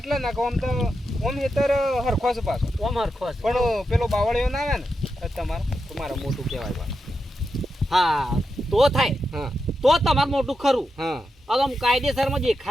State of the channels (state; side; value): normal; both; correlation 0.87